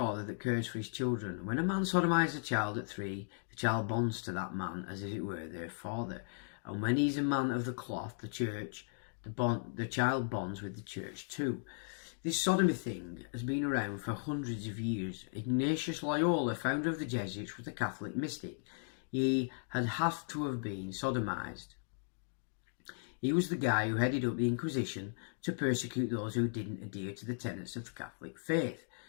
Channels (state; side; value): silent; right; digital silence